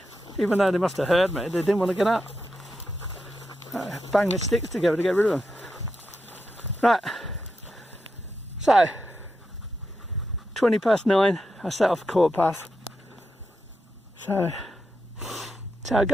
Even though they must have heard me, they didn't want to get up. Bang the sticks together to get rid of them. Right, so 20 past 9, I set off 1/4 past. So that's how it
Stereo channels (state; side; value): normal; both; correlation 0.86